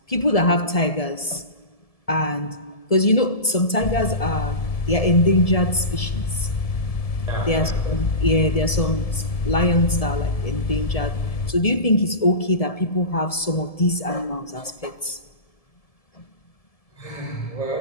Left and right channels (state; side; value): late; right; 1.7 ms